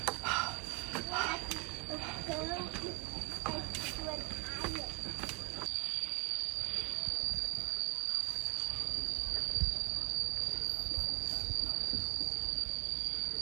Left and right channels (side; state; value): left; quieter; 30.4 dB